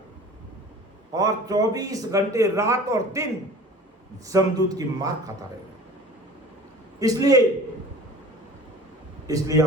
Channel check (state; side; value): normal; both; correlation 0.42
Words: और 24 घंटे रात और दिन जमदूत की मार खाता रहेगा। इसलिए